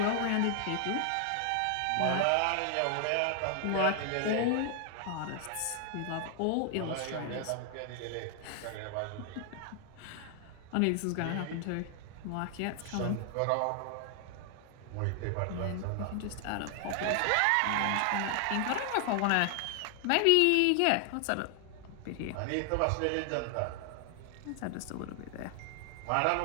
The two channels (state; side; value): different; both; correlation 0.00